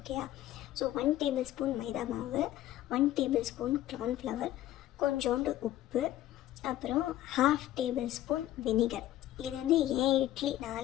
ஸோ 1 டேபிள் ஸ்பூன் மைதா மாவு, 1 டேபிள் ஸ்பூன் கார்ன்ஃப்ளவர், கொஞ்சோண்டு உப்பு, அப்புறம் 1/2 டேபிள் ஸ்பூன் வினிகர். இது வந்து ஏன் இட்லி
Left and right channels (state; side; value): quieter; right; 13.7 dB